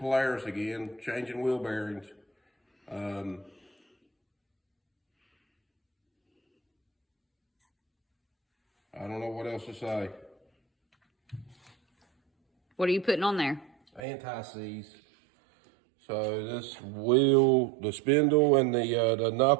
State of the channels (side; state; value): left; drops out; at 14.0 s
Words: again, changing wheel bearings. I don't know what else to say. What are you putting on there? Anti-seize. So this wheel, the spindle and the